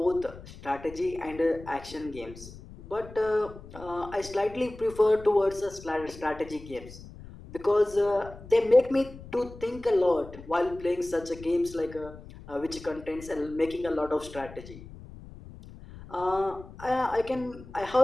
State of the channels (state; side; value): noise; left; rumble, 16 dB below the sound